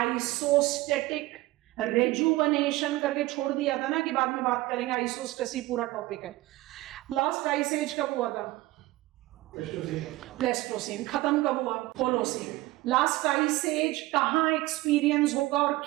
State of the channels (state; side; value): quieter; left; 18.9 dB